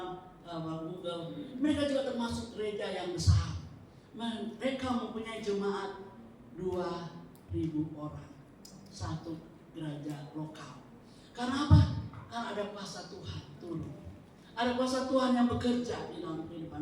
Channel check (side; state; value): both; identical; correlation 1.00